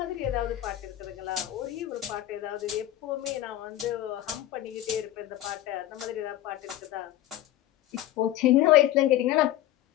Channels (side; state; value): right; quieter; 13.7 dB